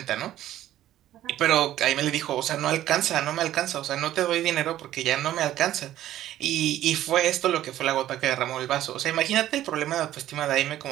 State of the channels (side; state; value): left; quieter; 13.1 dB